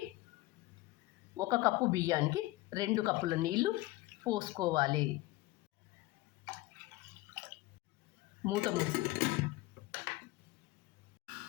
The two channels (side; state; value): right; quieter; 19.2 dB